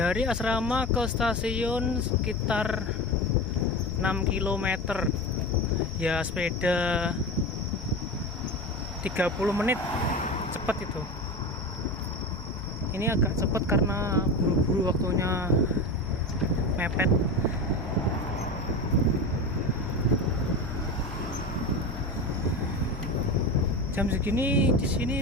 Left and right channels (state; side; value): normal; both; correlation 0.26